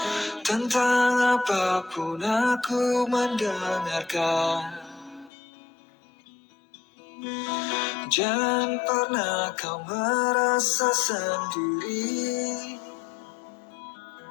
tentang apapun aku mendengarkan. Jangan pernah kau merasa sendiri.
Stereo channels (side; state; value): right; drops out; at 5.3 s